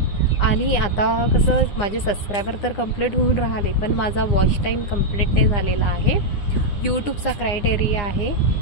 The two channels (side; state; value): right; late; 9.8 ms